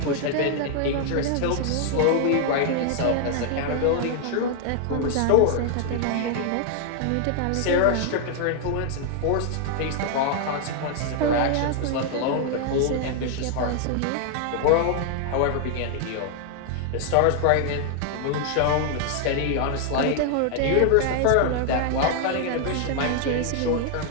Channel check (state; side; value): different; both; correlation 0.00